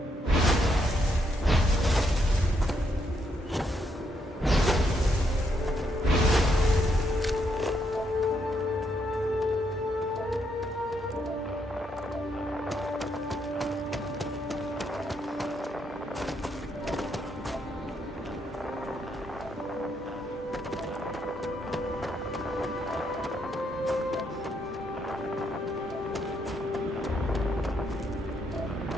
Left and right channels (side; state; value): both; normal; correlation 0.76